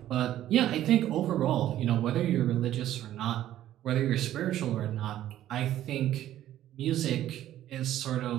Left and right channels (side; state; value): left; quieter; 12.7 dB